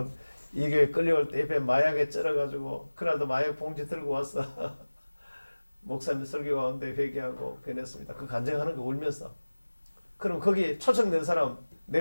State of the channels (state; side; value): inverted; both; correlation -1.00